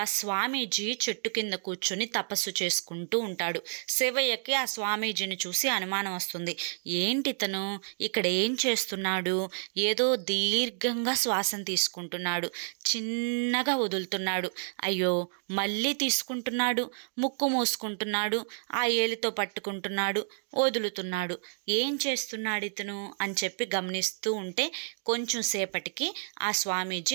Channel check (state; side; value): silent; left; digital silence